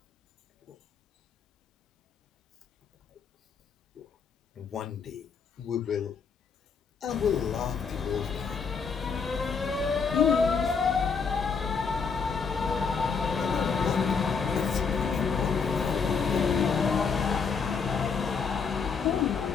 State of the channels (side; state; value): right; quieter; 5.6 dB